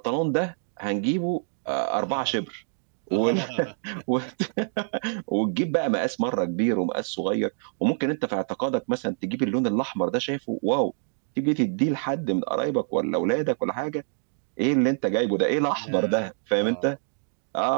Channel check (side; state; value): left; silent; 61 dB below the other